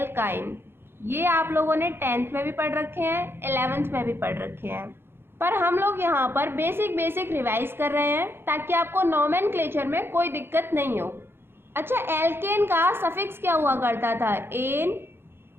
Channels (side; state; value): left; late; 0.11 ms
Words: ये आप लोगों ने 10th में भी पढ़ रखे हैं, 11th में भी पढ़ रखे हैं, पर हम लोग यहाँ पर बेसिक रिवाइज कर रहे हैं ताकि आपको नोमेनक्लेचर में कोई दिक्कत नहीं हो। अच्छा, एल्केन का सफिक्स क्या हुआ करता था? एन,